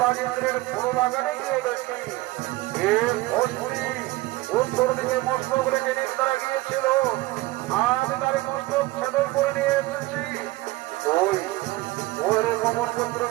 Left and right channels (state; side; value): quieter; left; 19.3 dB